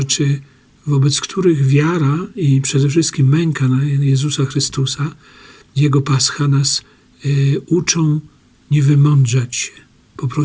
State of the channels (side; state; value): both; identical; correlation 1.00